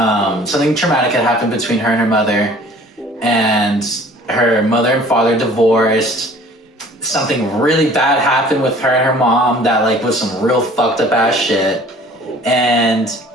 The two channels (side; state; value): both; normal; correlation 0.50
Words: something traumatic had happened between her and her mother, and her mother and father divorced. Something really bad happened with her and her mom that like was some real fucked up ass shit, and